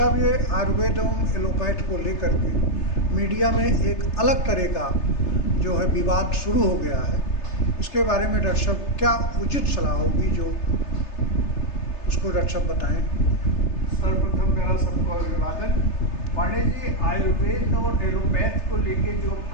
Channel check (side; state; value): right; late; 3.3 ms